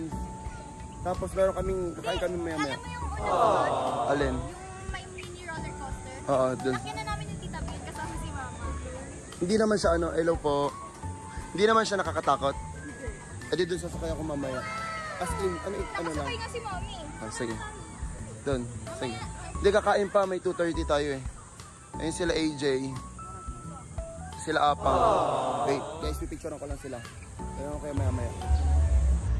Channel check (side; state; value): both; identical; correlation 1.00